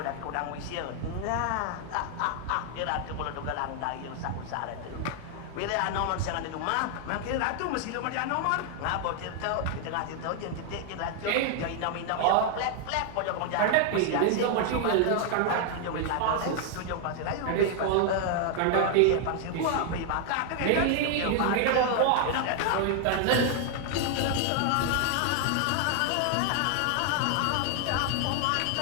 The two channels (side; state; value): both; different; correlation 0.00